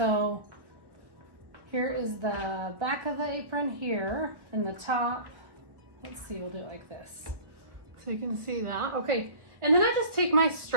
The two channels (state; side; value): late; left; 1.4 ms